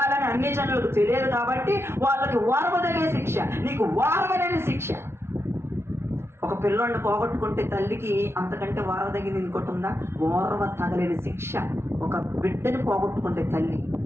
అన్ని జనులకు తెలియదు. కాబట్టి వాళ్ళకి ఓర్వదగే శిక్ష, నీకు ఓర్వలేని శిక్ష. ఒక పిల్లోడిని పోగొట్టుకుంటే తల్లికి అంతకంటే ఓర్వదగినది ఇంకోటి ఉందా? ఓర్వ తగలేని శిక్ష ఒక బిడ్డని పోగొట్టుకుంటే తల్లి.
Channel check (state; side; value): late; left; 0.12 ms